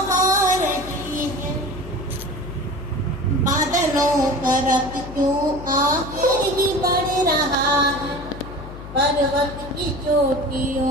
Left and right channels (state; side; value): noise; left; hum, 13 dB below the sound